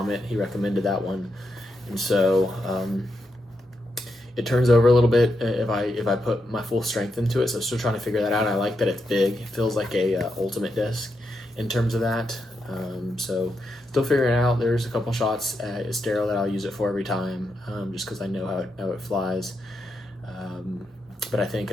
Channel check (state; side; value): normal; both; correlation 0.83